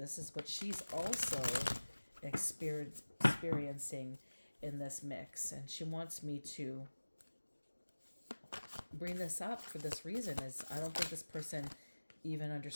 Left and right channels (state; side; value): inverted; both; correlation -1.00